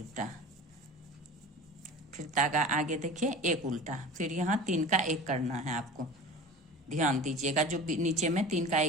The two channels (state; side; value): normal; both; correlation 0.36